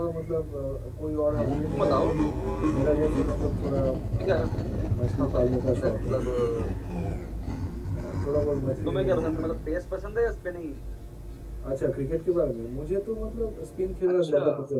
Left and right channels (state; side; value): identical; both; correlation 1.00